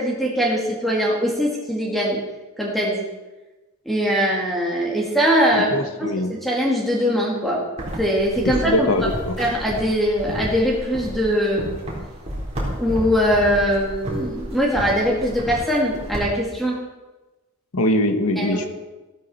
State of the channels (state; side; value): normal; both; correlation 0.45